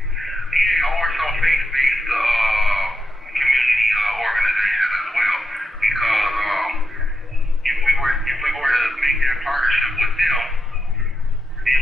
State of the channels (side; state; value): both; normal; correlation 0.86